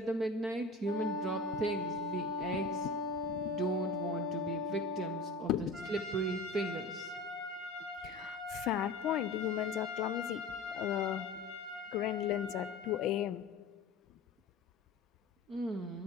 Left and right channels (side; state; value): right; quieter; 3.1 dB